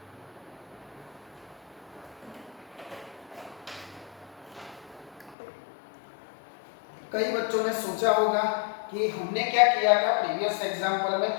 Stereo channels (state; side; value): drops out; right; at 5.4 s